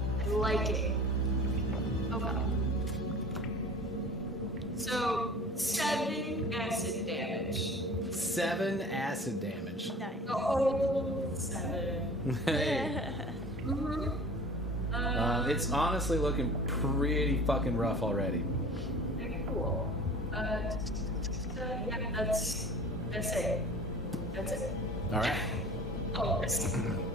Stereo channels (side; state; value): both; normal; correlation 0.43